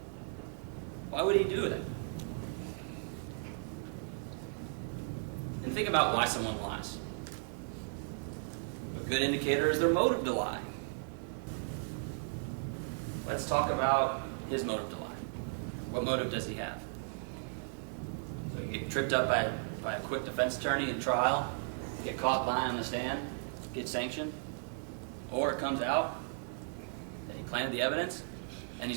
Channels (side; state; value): left; silent; digital silence